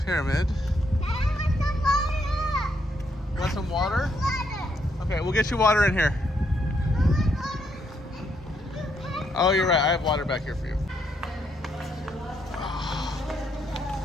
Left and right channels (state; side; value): normal; both; correlation 0.75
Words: pyramid. You want some water? Okay, we'll get you water in here. Oh, you're right. I have water back here for you.